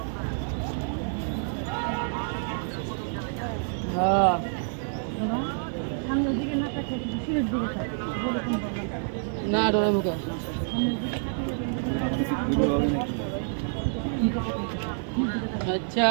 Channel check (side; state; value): left; silent; 59 dB below the other